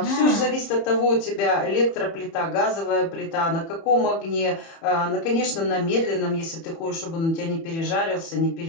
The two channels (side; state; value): right; late; 30 ms